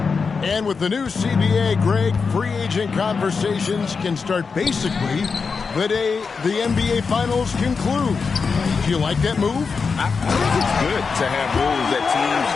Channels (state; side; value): quieter; right; 5.1 dB